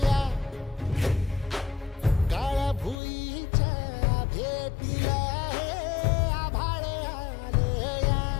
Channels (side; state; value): right; drops out; at 3.0 s